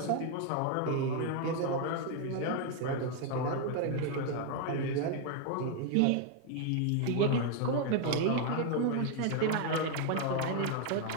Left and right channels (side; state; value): both; different; correlation 0.00